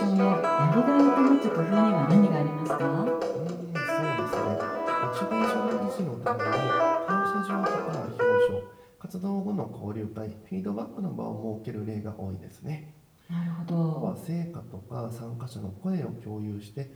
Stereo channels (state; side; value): identical; both; correlation 1.00